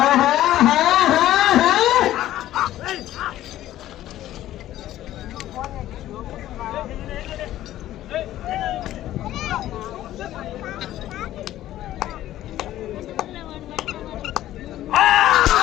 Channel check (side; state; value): right; quieter; 13.6 dB